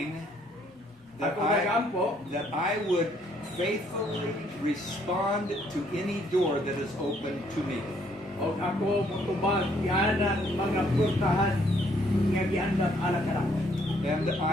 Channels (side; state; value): both; normal; correlation 0.67